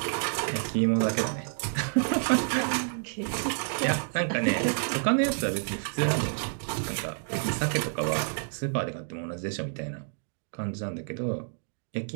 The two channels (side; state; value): left; silent; digital silence